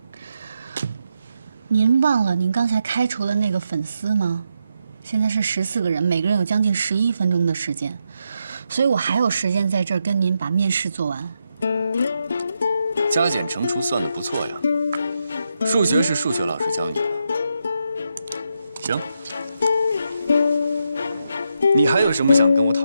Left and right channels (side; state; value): both; inverted; correlation -0.83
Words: 您忘了您刚才开除了那个粉丝吗？现在是14个人，每个人有将近11分钟的时间，所以我还有时间在这儿跟您把面试做完。加减乘除算得不错呀，数学是数学老师教你的。行，你还有什么想跟我